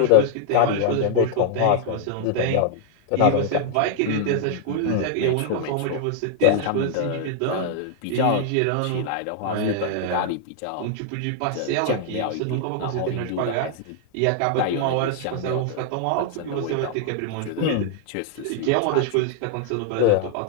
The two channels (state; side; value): different; both; correlation -0.01